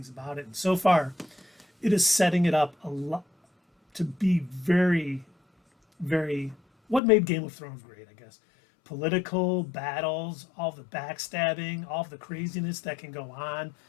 about it. And so far, it is setting it up a lot to be very, very, what made Game of Thrones great, I guess. Political battles, all the backstabbing, all the craziness that can go on.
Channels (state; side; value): drops out; right; at 7.0 s